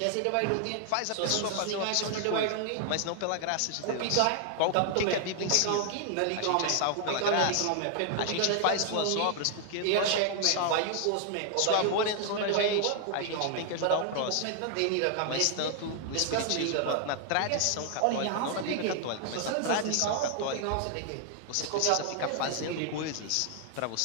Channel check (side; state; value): both; different; correlation 0.00